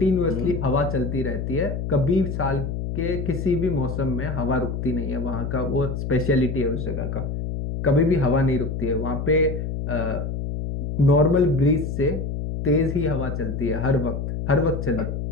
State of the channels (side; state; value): left; noise; hum, 4 dB below the sound